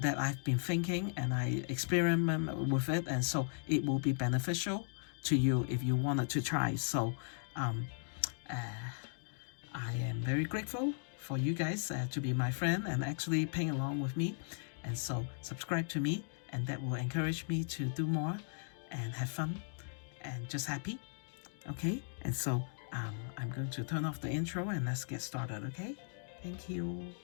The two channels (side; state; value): right; silent; digital silence